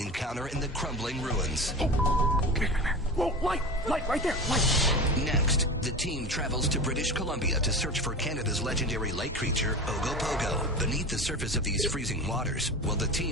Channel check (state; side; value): normal; both; correlation 0.29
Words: in the crumbling ruins. Whoa, light, right there, light. Next, the team travels to British Columbia to search for Canada's legendary lake creature, Ogopogo. Beneath the surface of these freezing waters, will the